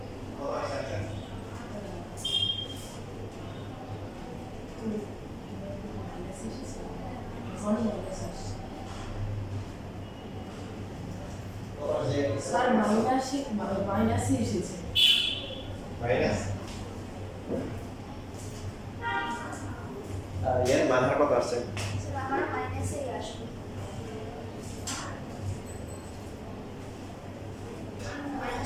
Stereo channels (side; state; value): both; identical; correlation 1.00